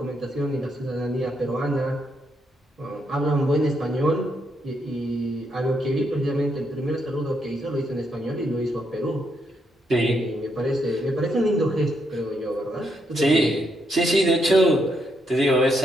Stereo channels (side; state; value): both; normal; correlation 0.78